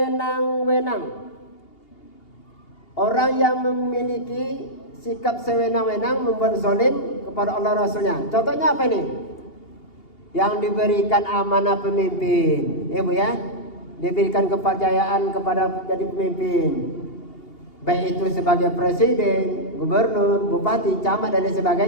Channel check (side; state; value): right; late; 2.8 ms